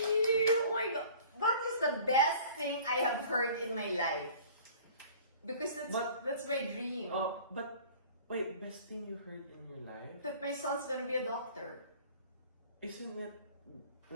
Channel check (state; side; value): inverted; both; correlation -0.48